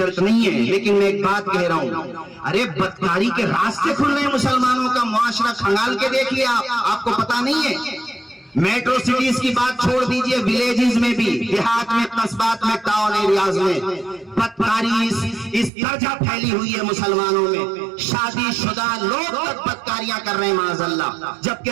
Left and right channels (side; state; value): left; drops out; at 15.7 s